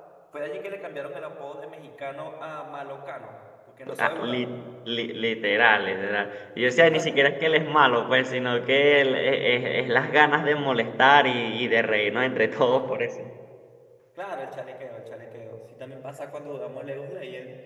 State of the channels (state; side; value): identical; both; correlation 1.00